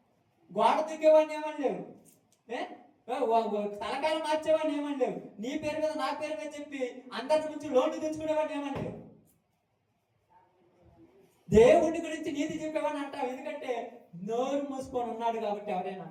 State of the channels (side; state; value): both; identical; correlation 1.00